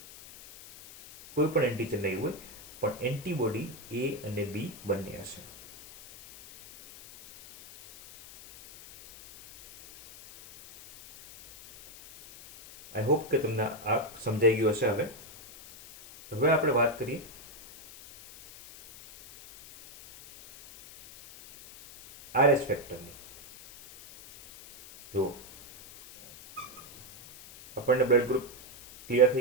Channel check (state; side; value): noise; left; hiss, 18 dB below the sound